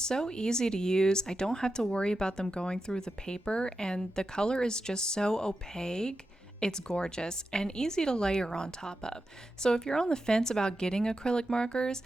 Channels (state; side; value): normal; both; correlation 0.90